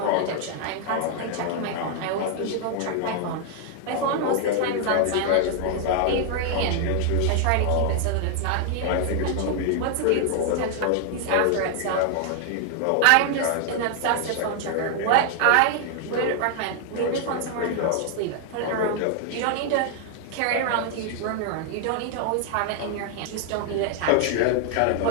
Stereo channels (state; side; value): different; both; correlation 0.00